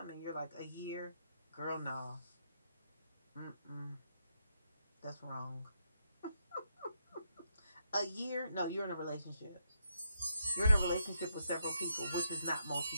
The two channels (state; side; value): inverted; both; correlation -0.80